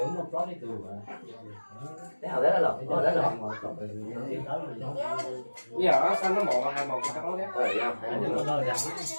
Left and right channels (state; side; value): inverted; both; correlation -1.00